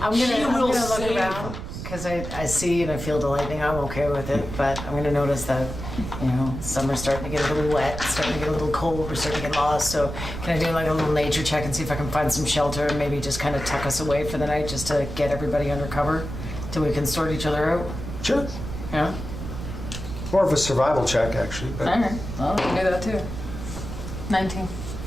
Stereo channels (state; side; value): noise; right; rumble, 8 dB below the sound